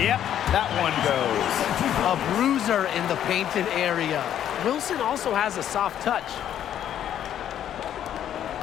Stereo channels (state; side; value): quieter; right; 10.5 dB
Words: that one goes. A bruiser in the painted area. Wilson also has a soft touch.